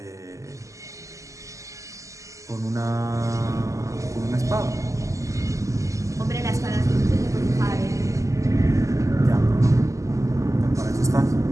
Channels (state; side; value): late; left; 0.16 ms